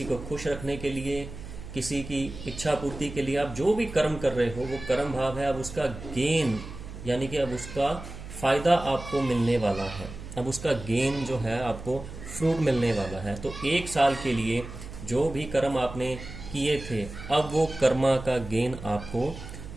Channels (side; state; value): right; noise; hum, 12 dB below the sound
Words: को खुश रखने के लिए, किसी की इच्छा पूर्ति के लिए, आप जो भी कर्म कर रहे हो वो कर्म भाव है। अब उसका गेन यानी कि अब उसका फायदा आपको मिलने वाला है, अब उसका गेन जो है आपको फ्रूट मिलने वाला है। तो 1 साल के लिए जो भी कर्म आपने किए थे अब वो कर्मा का गेन आपको